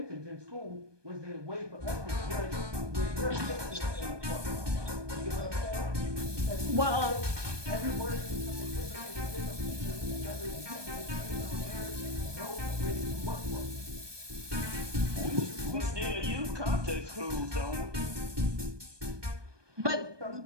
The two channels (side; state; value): left; late; 1.2 ms